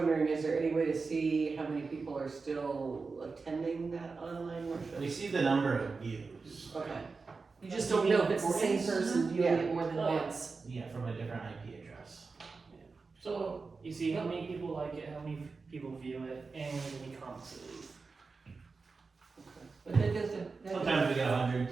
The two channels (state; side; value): quieter; left; 4.4 dB